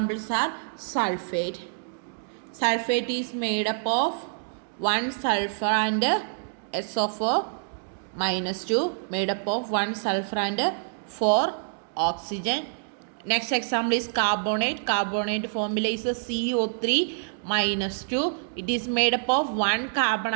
are sulfate. Sulfate is made up of one sulfur and SO4 minus 2, made up of one sulfur and 4 oxygen. Next example is carbonate. Carbonate formula is CO3 minus 2. It is made up of one carbon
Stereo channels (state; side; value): silent; left; digital silence